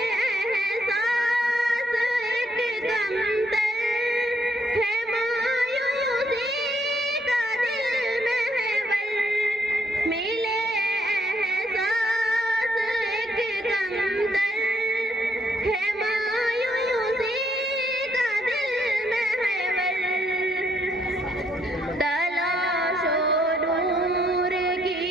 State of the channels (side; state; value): both; normal; correlation 0.71